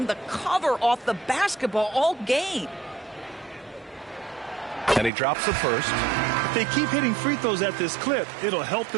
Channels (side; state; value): left; drops out; at 5.1 s